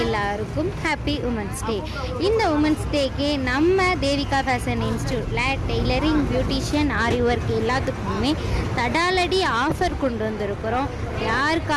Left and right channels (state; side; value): identical; both; correlation 1.00